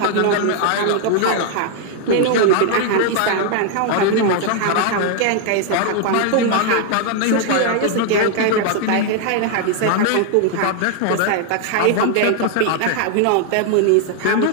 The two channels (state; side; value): different; both; correlation 0.00